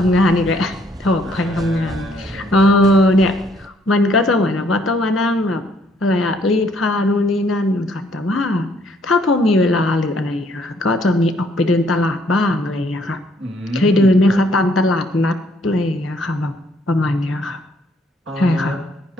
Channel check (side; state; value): both; normal; correlation 0.66